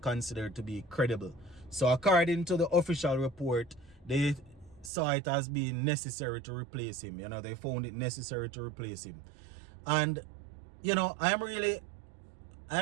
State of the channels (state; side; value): drops out; left; at 4.9 s